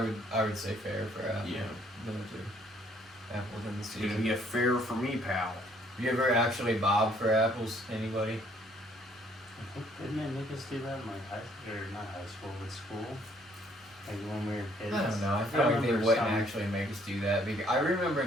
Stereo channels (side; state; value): both; normal; correlation 0.64